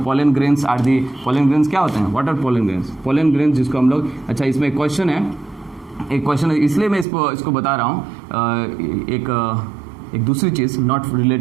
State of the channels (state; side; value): drops out; left; at 7.1 s